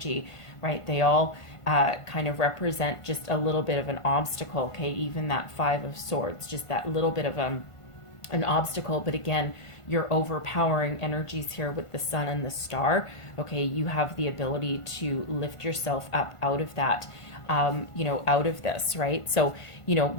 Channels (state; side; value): late; right; 1.5 ms